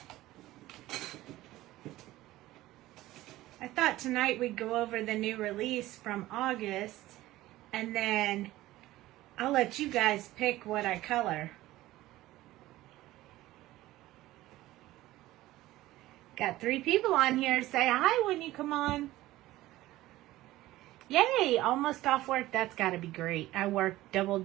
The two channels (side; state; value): left; quieter; 16.5 dB